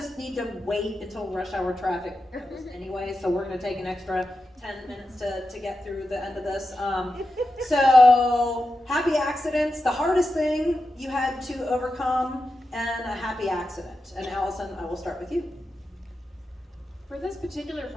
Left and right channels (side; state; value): both; normal; correlation 0.90